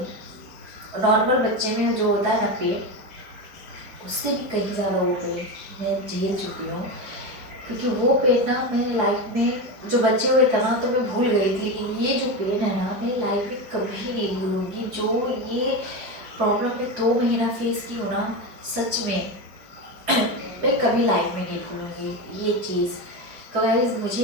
नॉर्मल बच्चे में जो होता है ना पेट, उससे भी कहीं ज़्यादा वो पेन मैं झेल चुकी हूँ। क्योंकि वो पेन ना मेरे लाइफ में जो बच्चे हुए थे ना तो मैं भूल गई थी, लेकिन ये जो पेन है ना मेरी लाइफ में कभी नहीं भूलूंगी। जो ये प्रॉब्लम मैं 2 महीना फेस की हूँ ना, सच में मैं कभी लाइफ में नहीं भूलूंगी ये चीज़। तो गाइस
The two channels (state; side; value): late; left; 4.8 ms